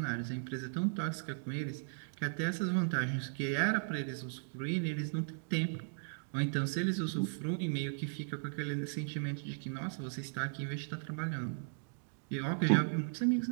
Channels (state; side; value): silent; left; digital silence